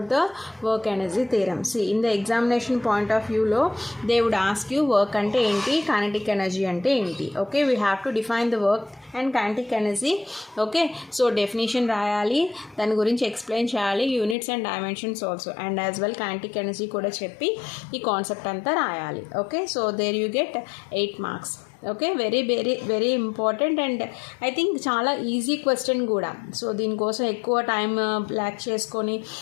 the work energy theorem. See, in the examination point of view lo they would ask you work ante enti, kinetic energy ante enti. Okay, we have to define the work and kinetic energy. Okay, so definition రాయాలి, దాని గురించి explain చేయాలి, units and dimensions also, and as well kinetic energy కూడా చెప్పి ఈ concept అంతా రాయాలి. Okay, so there you get 8 marks. Okay, very very very important and I think చాలా ఈజీ క్వశ్చన్ కూడా. సో దీనికోసం ఎక్కువ టైం బ్లాక్ చేసుకొని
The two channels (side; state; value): right; drops out; at 14.4 s